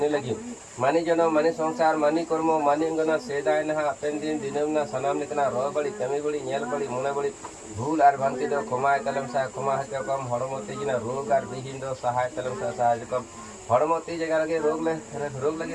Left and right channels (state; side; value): identical; both; correlation 1.00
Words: लगी मानी जनो मानी संसार मानी कर्म मानी अंगना सेदाय ना पेन दिन दिनम ना सनाम निकना रो बड़ी कमी बड़ी नेल बड़ी मुने बड़ी भूल आर भंति दो खमाय तलम सा खमा हते कम हड़मो तेजिना रोग आर बिहीन दो सहाय तलम सा सहाय कम हड़मो ती जगह लगे रोग लगे